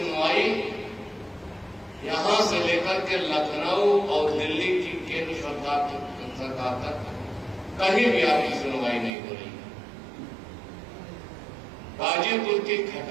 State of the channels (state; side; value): drops out; left; at 9.1 s